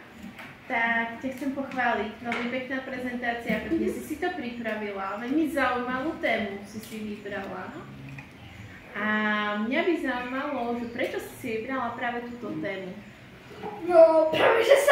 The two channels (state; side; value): identical; both; correlation 1.00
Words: Tak ťa chcem pochváliť. Veľmi pekná prezentácia, pretože si to pripravila. Veľmi zaujímavú tému si vybrala. A mňa by zaujímalo, že prečo si vybrala práve túto tému? No, práve že